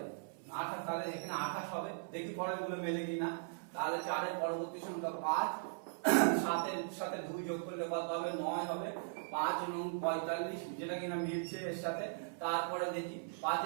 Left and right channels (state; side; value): silent; left; 52 dB below the other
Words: 28। তাহলে এখানে 28 হবে, দেখি পরেরগুলো মেলে কিনা। তাহলে 4 এর পরবর্তী সংখ্যা 5, 7 এর সাথে 2 যোগ করলে কত হবে 9 হবে, 5 এবং 45 যেটা কিনা মিলছে এর সাথে। তারপরে দেখি 5